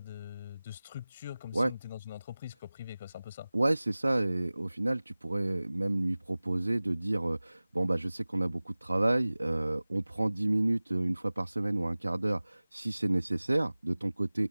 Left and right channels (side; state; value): both; inverted; correlation -0.99